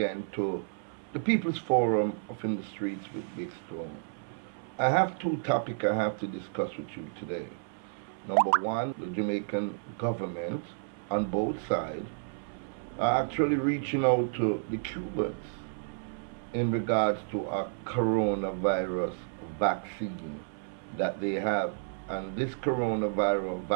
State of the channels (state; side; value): silent; left; 57 dB below the other